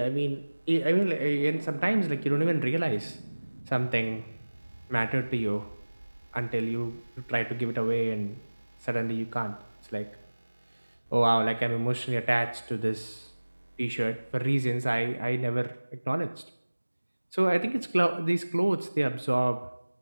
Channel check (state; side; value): inverted; both; correlation -1.00